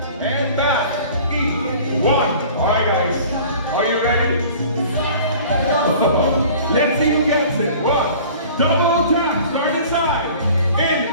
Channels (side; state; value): both; inverted; correlation -0.46